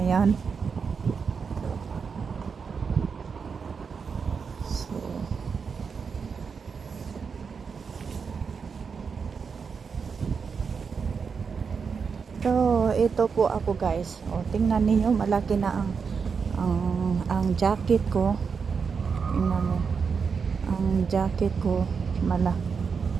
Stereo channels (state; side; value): quieter; left; 5.7 dB